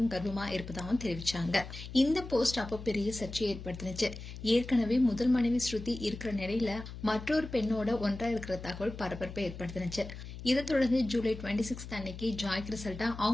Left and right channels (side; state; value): left; noise; hum, 11 dB below the sound